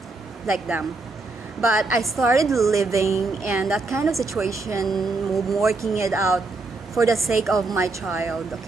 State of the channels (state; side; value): quieter; left; 3.5 dB